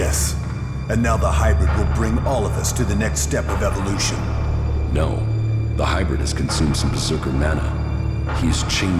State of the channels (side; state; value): both; identical; correlation 1.00